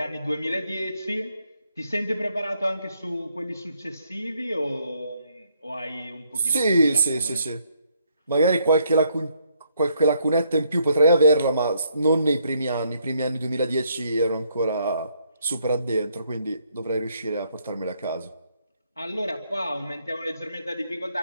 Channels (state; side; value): inverted; both; correlation -0.72